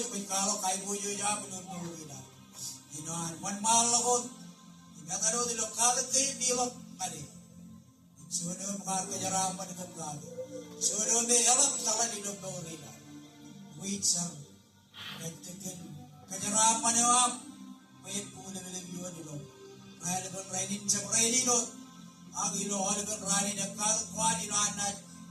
wal kalo kai boyo ya bunun bulina. Inoan wan malakot, ingataro dilo kalat kayo dilo kali. Suno mga kajarapan ng kaplago. Suno may alam tala dilo bulina. Wait sang. Katakan kajarapan yang am, payet pula lagi yuan ilo. Raya lepas rainin cak rainin ilo, agi ilo lepas rainin yang kau kuat ilo anak,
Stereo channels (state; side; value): identical; both; correlation 1.00